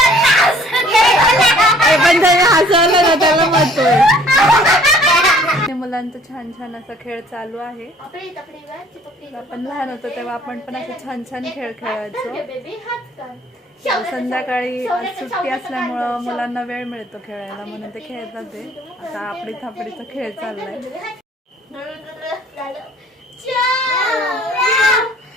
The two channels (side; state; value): both; normal; correlation 0.56